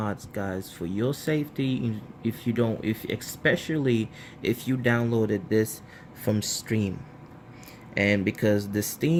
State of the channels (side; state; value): both; identical; correlation 1.00